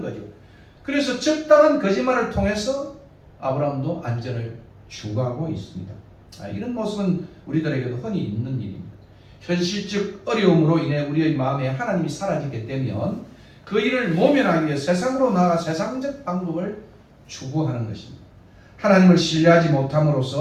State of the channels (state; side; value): identical; both; correlation 1.00